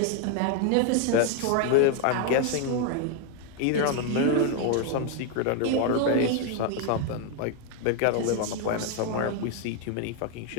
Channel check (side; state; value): both; different; correlation 0.01